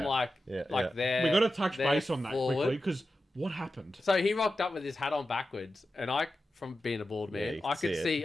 like Yeah. there. We got to touch there base on that forward. quickly because what happened? So he rocked up with his hat on backwards, and I, from being a bald man, you I could could see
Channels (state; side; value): normal; both; correlation 0.92